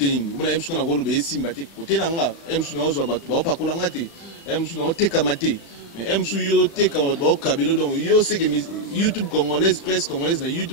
nini bona emsu na rolo be simba te côté nanga emsu na ozo batu ba pakola ngate emsu na oteka mate mais emsu yo teka ba kabelo donc yo c'est que YouTube congolaise presse congolaise na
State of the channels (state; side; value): late; right; 36 ms